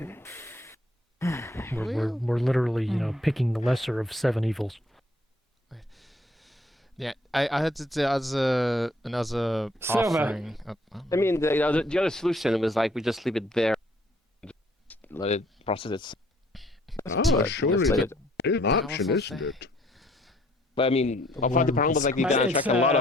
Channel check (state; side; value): normal; both; correlation 0.63